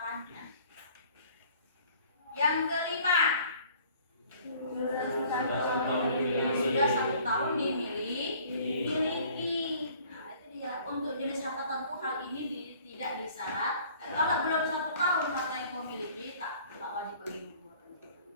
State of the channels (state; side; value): inverted; both; correlation -0.53